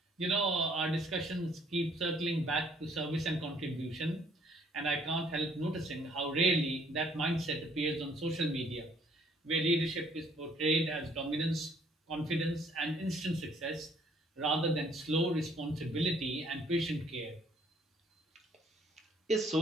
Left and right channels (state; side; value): normal; both; correlation 0.63